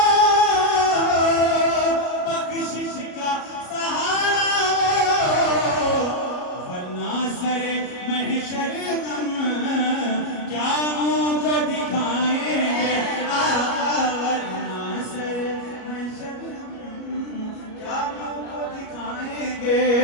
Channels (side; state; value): right; late; 33 ms